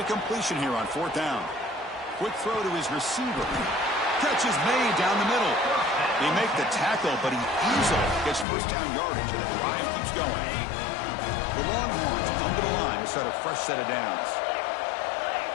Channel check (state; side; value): drops out; right; at 8.5 s